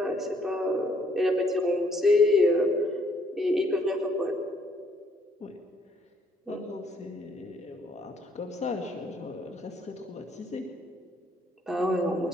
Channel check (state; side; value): normal; both; correlation 0.67